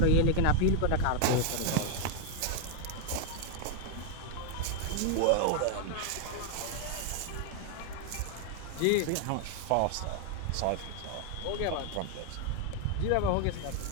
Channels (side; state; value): both; different; correlation 0.00